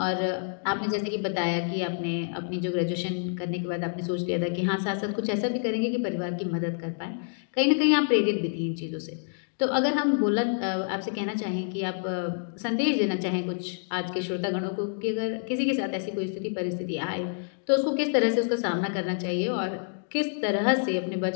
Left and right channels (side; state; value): right; silent; digital silence